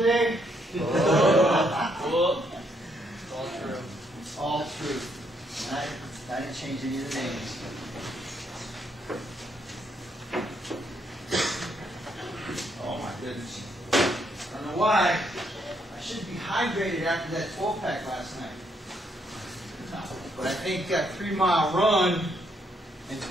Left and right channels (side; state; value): both; normal; correlation 0.73